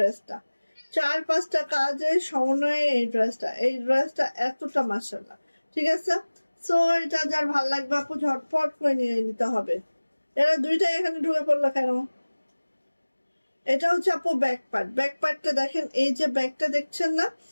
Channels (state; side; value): inverted; both; correlation -1.00